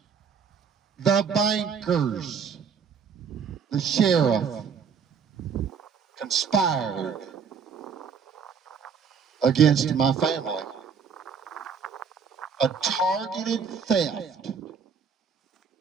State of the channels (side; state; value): left; quieter; 6.3 dB